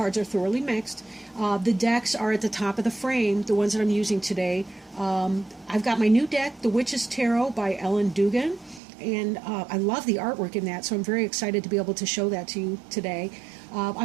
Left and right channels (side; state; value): left; drops out; at 8.8 s